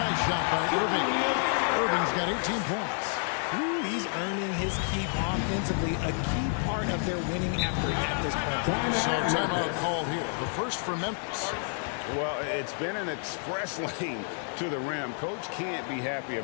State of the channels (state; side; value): silent; right; 55 dB below the other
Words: shot by Irving. Irving's got 18 points. Ooh, he's earning his keep offensively, a key part of their winning effort at this point. So timeout call here. The first for Memphis. Well, it's been an express lane to the rim. Coach can't be happy